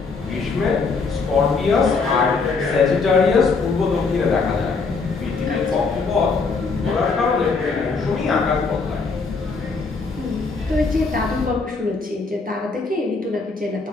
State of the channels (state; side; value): quieter; right; 4.4 dB